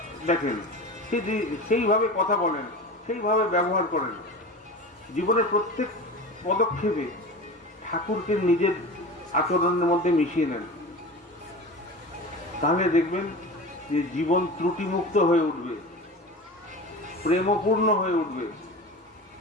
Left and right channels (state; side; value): normal; both; correlation 0.32